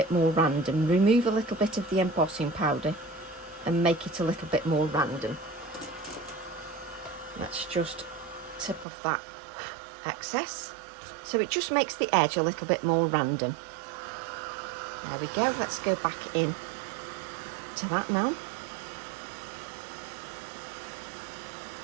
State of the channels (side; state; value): left; drops out; at 8.8 s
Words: more random. Remove a little bit of the embossing powder and make it a little bit more random. Let's just tip off that excess. So it just makes the edge a little bit more random. There we go. Let's go back in to that now.